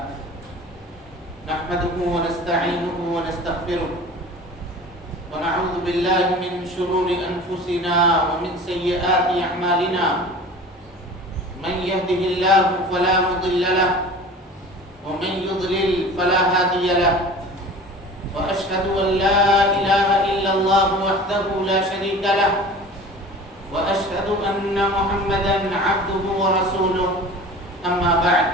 نحمده ونستعينه ونستغفره ونعوذ بالله من شرور أنفسنا ومن سيئات أعمالنا من يهده الله فلا مضل له ومن يضلل فلا هادي له وأشهد أن لا إله إلا الله وحده لا شريك له وأشهد أن محمدا عبده ورسوله أما بعد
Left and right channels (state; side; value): normal; both; correlation 0.40